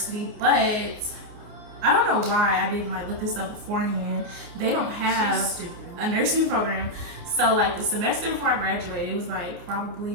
but I don't know why I didn't like look this up beforehand. They don't have a nursing program. So like the semester before I graduated, it was like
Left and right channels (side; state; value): left; late; 29 ms